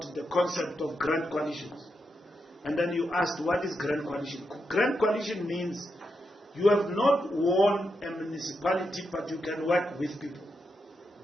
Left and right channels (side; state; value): both; normal; correlation 0.85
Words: the concept of grand coalitions. And then you asked, what is grand coalition? Grand coalition means you have not won a municipality, but you can work with people